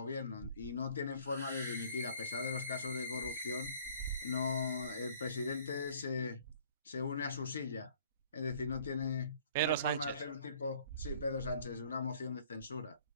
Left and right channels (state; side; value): inverted; both; correlation -0.56